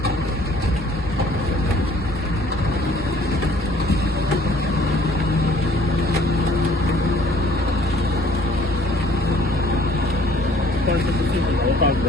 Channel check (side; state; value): both; normal; correlation 0.56